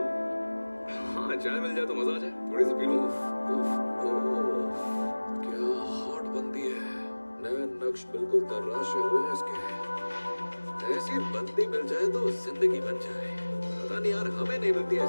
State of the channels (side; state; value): both; inverted; correlation -1.00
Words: हाँ, चाय मिल जाए तो मजा आ जाए, थोड़ी सी पी लूं। क्या हॉट बंदी है। नए नक्श बिल्कुल तराशे हुए हैं इसके। ऐसी बंदी मिल जाए तो जिंदगी बन जाए। पता नहीं यार, हमें नहीं मिलती